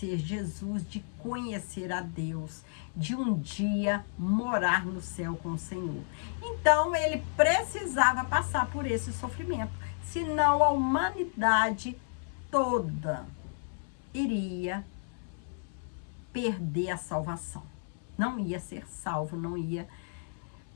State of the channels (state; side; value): silent; right; 56 dB below the other